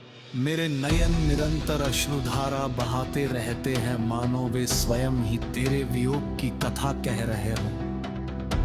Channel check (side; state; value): both; identical; correlation 1.00